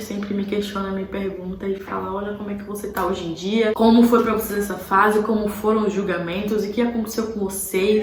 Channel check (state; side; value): identical; both; correlation 1.00